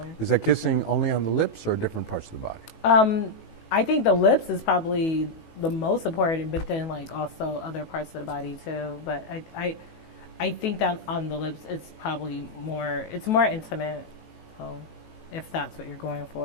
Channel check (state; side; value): late; right; 18 ms